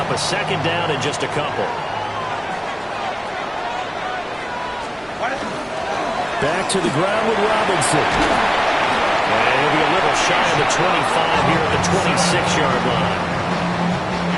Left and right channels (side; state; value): both; identical; correlation 1.00